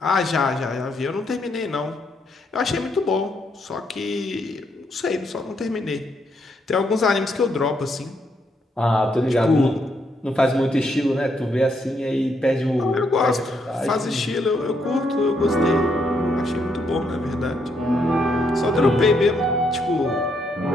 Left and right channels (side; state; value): both; normal; correlation 0.76